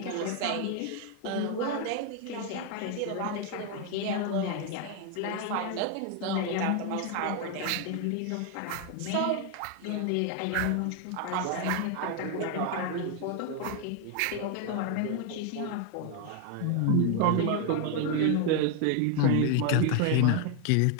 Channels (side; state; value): both; different; correlation 0.01